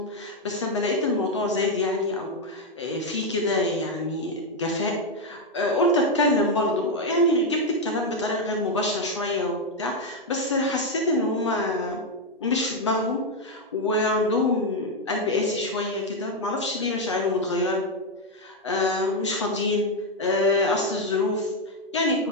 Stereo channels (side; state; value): both; normal; correlation 0.04